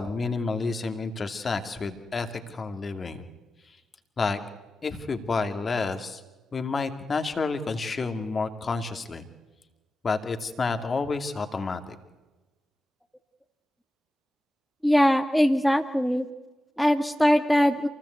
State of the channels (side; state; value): both; normal; correlation 0.94